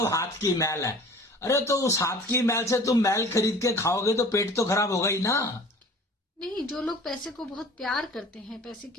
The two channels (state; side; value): normal; both; correlation 0.45